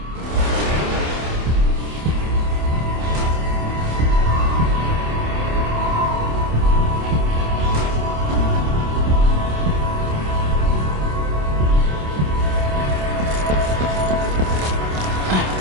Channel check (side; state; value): left; late; 27 ms